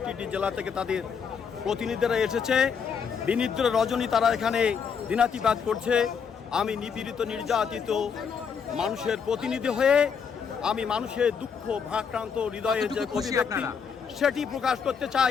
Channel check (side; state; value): right; quieter; 6.5 dB